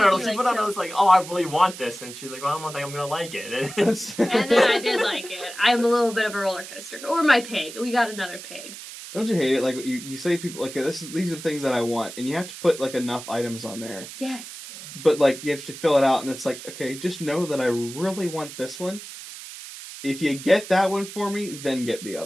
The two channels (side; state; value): right; noise; hiss, 13 dB below the sound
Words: She put on it like, oh, I really want this. And she's like, well, I don't think I'm going to like it. And then I did like it. I'm a little bit of a roller coaster. Or my pig. We got another pig. Don't you hate it? Like you say people like these are the things that I want, and you have to put like enough items on there. Yes. But like you have to fill it out, and it's like, okay, just know that I really want this one. If you get that one for me, then get the